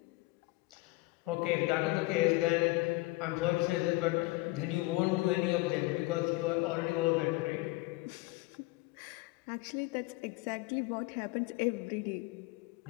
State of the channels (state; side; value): quieter; right; 22.4 dB